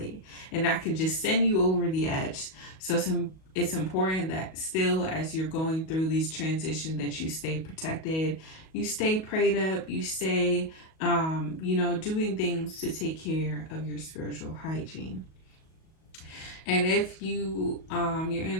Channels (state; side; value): late; right; 37 ms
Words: and that can just send you over the edge. So it's important that still, as you're going through these transitions, that you stay protected, you stay prayed up, you stay doing things to take care of your spiritual hygiene. And if your